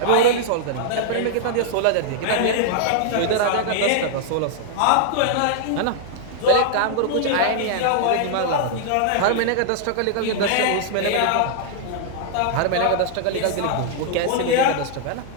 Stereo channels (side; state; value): both; different; correlation -0.01